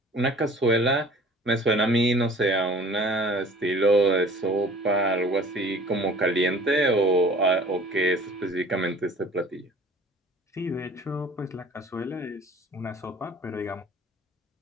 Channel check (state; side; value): normal; both; correlation 0.48